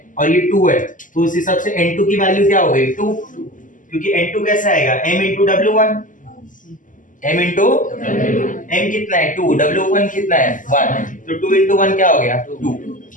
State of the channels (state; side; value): late; right; 0.38 ms